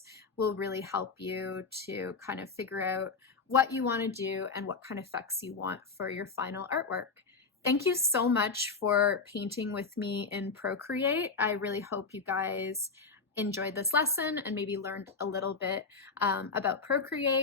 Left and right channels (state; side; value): quieter; right; 4.6 dB